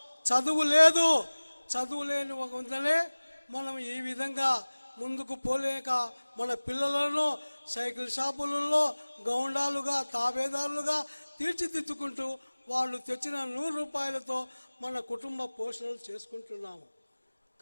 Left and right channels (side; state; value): both; inverted; correlation -1.00